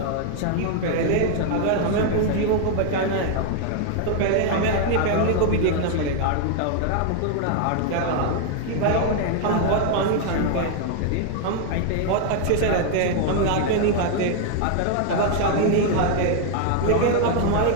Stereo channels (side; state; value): both; different; correlation 0.00